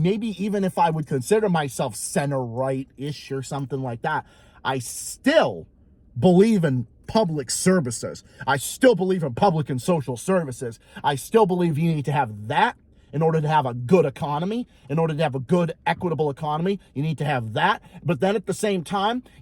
even if I would consider myself center right-ish or something like that, I still believe in public services. I still believe in public and social services. I still believe you need to have that in order to have a good economy. In order to have a good, equitable economy, you need to have that. But then at the same time,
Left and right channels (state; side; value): identical; both; correlation 1.00